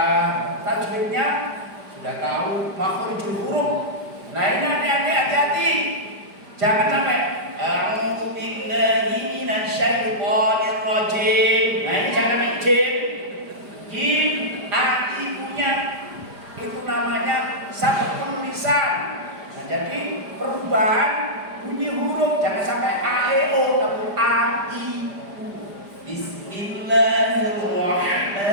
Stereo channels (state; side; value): late; left; 5.0 ms